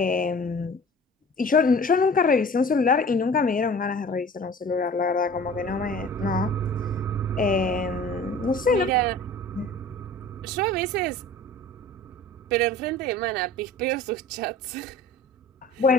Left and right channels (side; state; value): both; normal; correlation 0.43